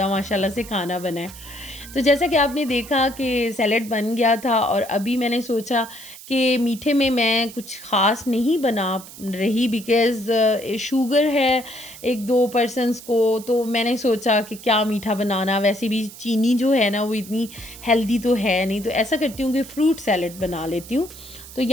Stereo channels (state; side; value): noise; right; hiss, 16 dB below the sound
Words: माशाल्लाह से खाना बना है। तो जैसा कि आपने देखा कि सैलेड बन गया था, और अभी मैंने सोचा कि मीठे में मैं कुछ ख़ास नहीं बना रही, बिकॉज़ शुगर है 1-2 पर्सन्स को, तो मैंने सोचा कि क्या मीठा बनाना, वैसे भी चीनी जो है ना वो इतनी हेल्दी तो है नहीं, तो ऐसा करती हूँ कि फ्रूट सैलेड बना लेती हूँ। तो